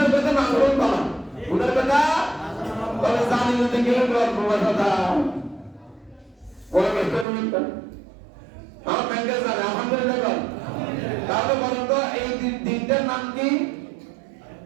কথা না করুন বাবা, গুনার কথা বলে জানি না কেউ গল্প কথা ওরা ব্যস্ত নয়। আমার ব্যাংকে জানে আলহামদুলিল্লাহ বল। তাহলে বলেন তো এই দিনটার নাম কি?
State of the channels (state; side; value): drops out; left; at 7.2 s